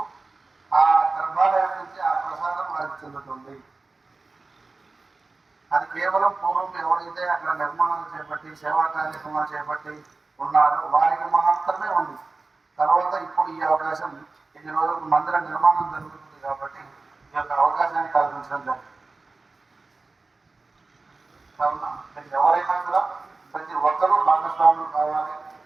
ఆ గర్భాలయం నుంచి ఆ ప్రసాదం వారికి చెందుతుంది. అది కేవలం పూర్వం ఎవరైతే అక్కడ నిర్మాణాలు చేపట్టి సేవా కార్యక్రమాలు చేపట్టి ఉన్నారో వారికి మాత్రమే ఉంది. తర్వాత ఇప్పుడు ఈ అవకాశం ఈ రోజులకు మందిర నిర్మాణం జరుగుతుంది కాబట్టి ఈ యొక్క అవకాశాన్ని కల్పించడం జరిగింది. కావున ఎవరైనా కూడా ప్రతి ఒక్కరూ భాగస్వాములు కావాలి,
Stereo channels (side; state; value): left; quieter; 3.7 dB